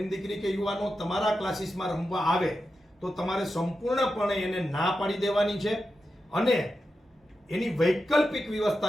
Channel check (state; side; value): normal; both; correlation 0.90